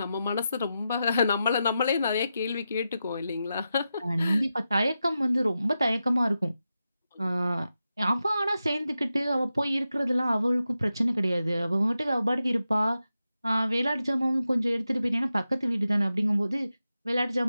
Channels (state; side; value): inverted; both; correlation -0.90